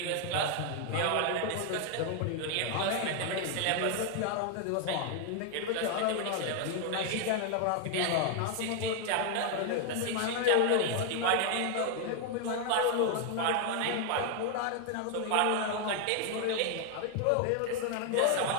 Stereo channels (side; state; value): both; different; correlation 0.00